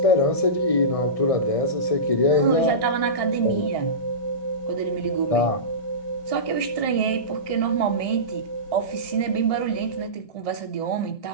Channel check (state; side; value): late; right; 1.6 ms